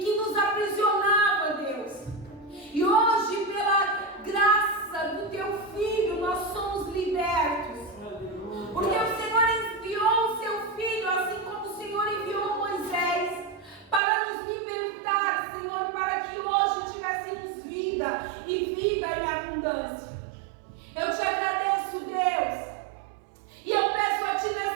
nos aprisionava, Deus. E hoje, pela graça do Teu Filho, nós somos libertos. Porque o Senhor enviou o Seu Filho, assim como o Senhor enviou Moisés, para nos libertar, Senhor, para que hoje tivéssemos vida e vida em abundância. Eu Te agradeço, Deus, e eu peço a Ti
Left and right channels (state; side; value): drops out; left; at 14.0 s